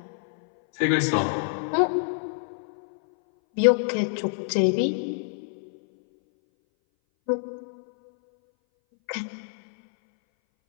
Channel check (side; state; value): right; silent; 59 dB below the other